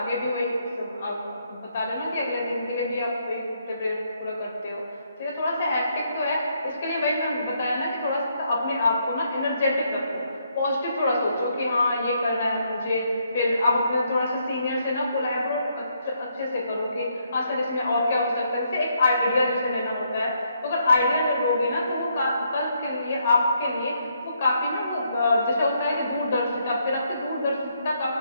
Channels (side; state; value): both; inverted; correlation -0.74